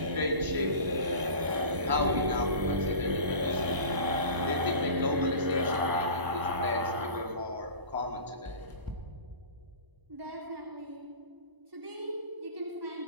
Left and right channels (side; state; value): left; late; 1.0 ms